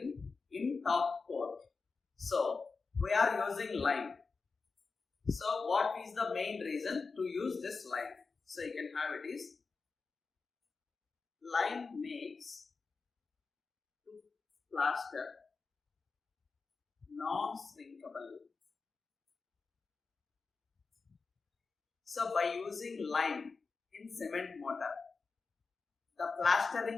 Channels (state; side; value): quieter; right; 4.5 dB